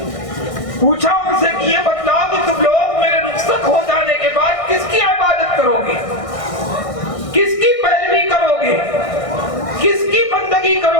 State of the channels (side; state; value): right; late; 1.6 ms